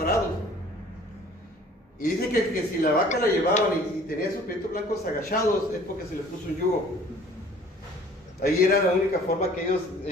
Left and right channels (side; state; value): both; normal; correlation 0.52